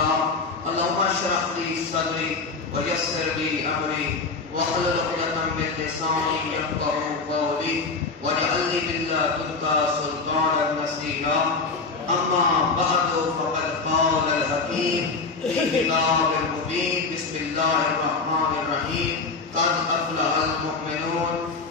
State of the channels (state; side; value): quieter; right; 4.2 dB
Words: اللهم اشرح لي صدري ويسر لي أمري واحلل عقدة من لساني يفقهوا قولي واجعل لي من لدنك سلطانا نصيرا. أما بعد فقد قال الحكيم في كتاب المبين بسم الله الرحمن الرحيم قد أفلح المؤمنون